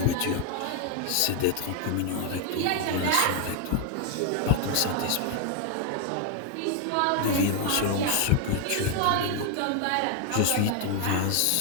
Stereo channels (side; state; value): both; different; correlation 0.01